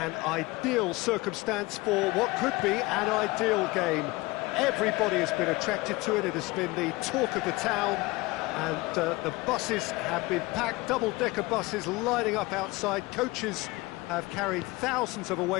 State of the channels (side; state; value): right; quieter; 21.9 dB